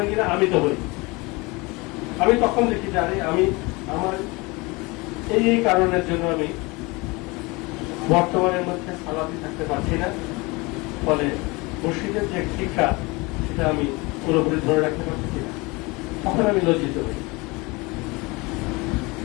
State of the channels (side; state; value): right; quieter; 25.1 dB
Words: কিনা, আমি তো হই। আমি তখন দেখি জানি আমি আমার এই কারণের জন্য আমি বর্তমানের মধ্যে সালাতি থাকতে পারছি না, ফলে মসজিদের যে শিক্ষা সেটা আমি পুরোপুরি ধরে রাখতে পারছি না। তখন আমি লজ্জিত হই,